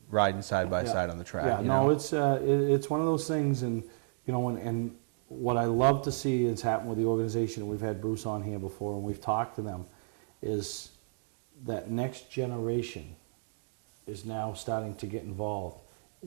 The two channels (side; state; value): left; silent; digital silence